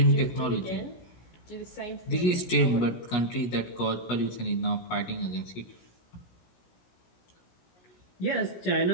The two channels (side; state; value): right; late; 17 ms